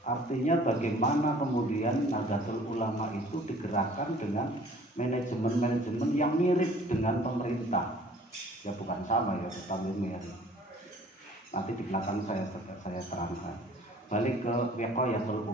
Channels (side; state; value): both; normal; correlation 0.52